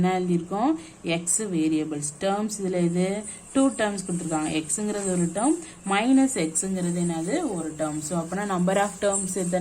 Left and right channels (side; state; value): both; identical; correlation 1.00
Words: எழுதியிருக்கோம், எக்ஸ் வேரியபிள்ஸ். டேர்ம்ஸ் இதில் இது 2 டேர்ம்ஸ் கொடுத்துருக்காங்க. எக்ஸுங்கிறது ஒரு டேர்ம், -xங்கிறது என்னது ஒரு டேர்ம். ஸோ அப்போனா நம்பர் ஆஃப் டேர்ம்ஸ்